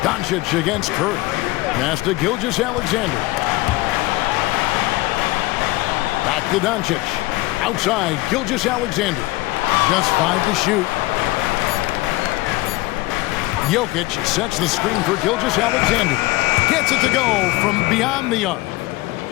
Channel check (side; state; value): right; quieter; 19.9 dB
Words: Doncic against Curry. Pass to Gilgeous-Alexander. Back to Doncic. Outside, Gilgeous-Alexander. Just 5 to shoot. Jokic sets the screen for Gilgeous-Alexander. Gets it to go from beyond the arc.